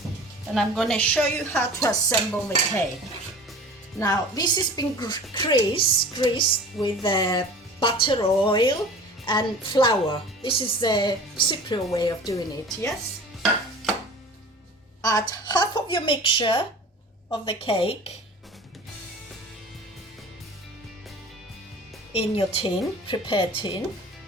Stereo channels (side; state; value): both; normal; correlation 0.40